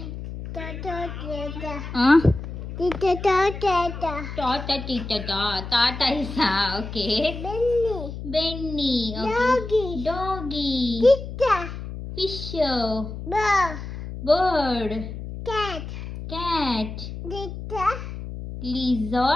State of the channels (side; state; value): left; noise; hum, 9 dB below the sound